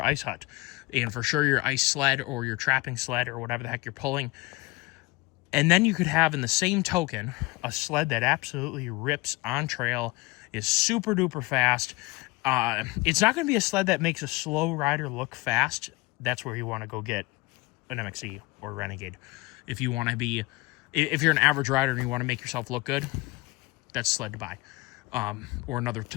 ice hut and for sure your ice sled or your trapping sled or whatever the heck you're pulling. And then you could have in the same token a sled that absolutely rips on trail, is super duper fast. It's not going to be a sled that makes a slow rider look fast. That's where you want to go get an MXE or Renegade. If you're an average rider and you want to make yourself look good, that's sled to buy. Or another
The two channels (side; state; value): right; quieter; 23.0 dB